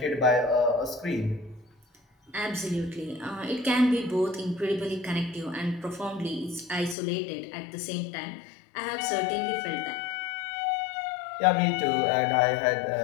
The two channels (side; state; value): right; drops out; at 7.0 s